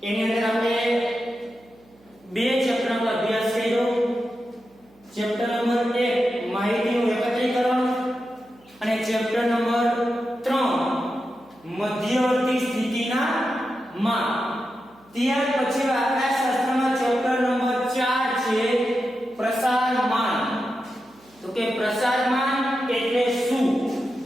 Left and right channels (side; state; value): right; noise; hum, 30 dB below the sound